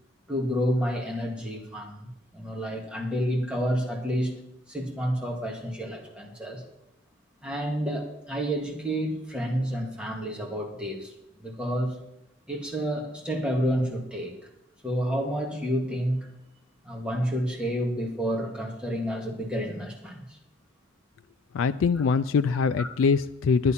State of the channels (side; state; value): both; normal; correlation 0.62